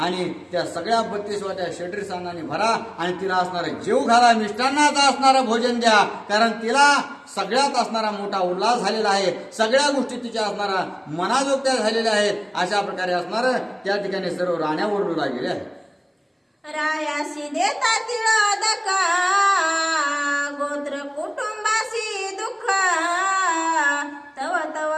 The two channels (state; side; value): identical; both; correlation 1.00